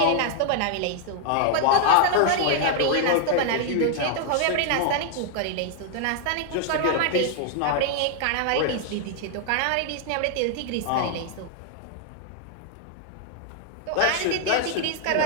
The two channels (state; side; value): different; both; correlation 0.00